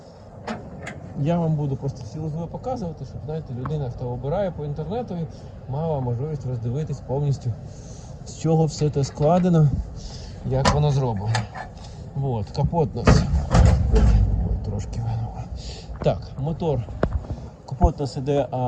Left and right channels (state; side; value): identical; both; correlation 1.00